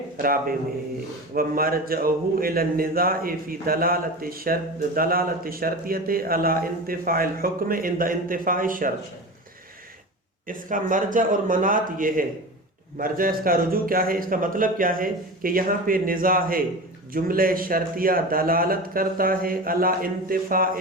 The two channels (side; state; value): both; normal; correlation 0.29